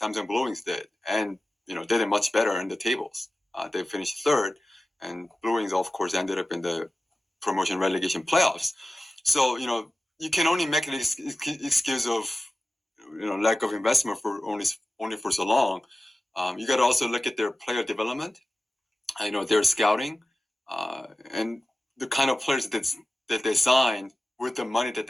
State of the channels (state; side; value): normal; both; correlation 0.94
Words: Blue Wings did, and they did much better in the tables. They finished third, and Blue Wings, of course, ended up in the promotion relegation playoffs. So you can only make an excuse of lack of investment for only for so long. You got to also look at their player development. Their scouting, and the kind of players that they signed with the money that